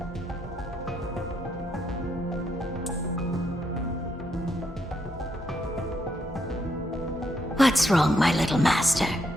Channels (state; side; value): normal; both; correlation 0.77